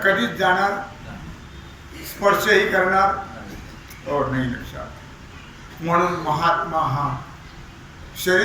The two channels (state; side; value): identical; both; correlation 1.00